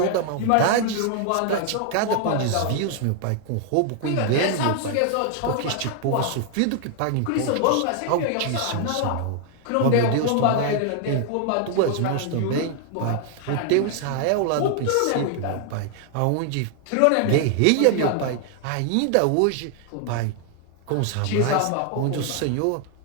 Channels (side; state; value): both; different; correlation 0.00